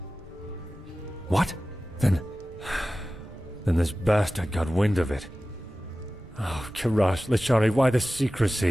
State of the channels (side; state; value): both; normal; correlation 0.96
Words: What? Then this bastard got wind of it. Oh, Kirash, Lashari, why the